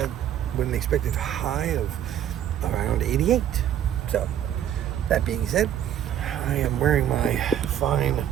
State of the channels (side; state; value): left; quieter; 10.4 dB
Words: With an expected high of around 88. So, that being said, I am wearing my fine